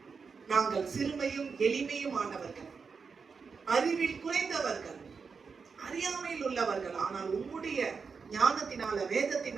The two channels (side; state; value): left; quieter; 5.3 dB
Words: நாங்கள் சிறுமையும் எளிமையும் ஆனவர்கள், அறிவில் குறைந்தவர்கள், அறியாமையில் உள்ளவர்கள், ஆனால் உம்முடைய ஞானத்தினால,